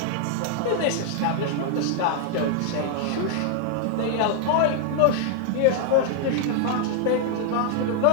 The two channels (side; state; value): both; different; correlation 0.00